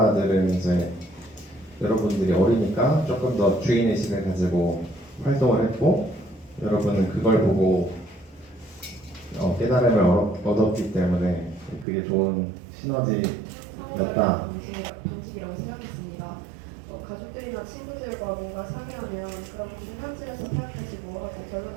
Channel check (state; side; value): drops out; left; at 11.9 s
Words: 이제 여러분들이 어리니까 조금 더 주인의식을 가지고 활동을 했고 여러분은 그걸 보고 깨달음을 얻었기 때문에 그게 좋은 시너지였다. 방식이라고 생각했습니다. 가족들이나 친구들과 뭔가 상의하면 그런 중간쯤에서 타협하시고 하고